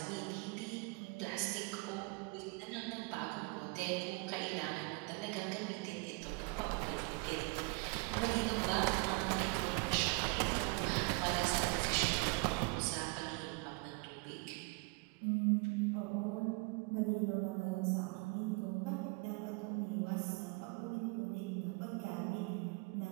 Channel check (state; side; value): quieter; left; 29.7 dB